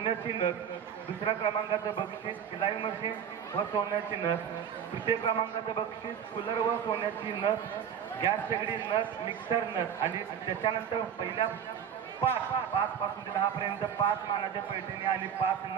नथ. दुसऱ्या क्रमांकाचं बक्षीस सिलाई मशीन व सोन्याची नथ. तृतीय क्रमांकाचं बक्षीस कूलर व सोन्याची नथ, गॅस शेगडी नथ, मिक्सर नथ. आणि त्याच्यानंतर पहिल्या 5 पासून ते 10 पर्यंत 5 मानाच्या पैठणी आणि 5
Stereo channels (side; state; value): left; quieter; 8.3 dB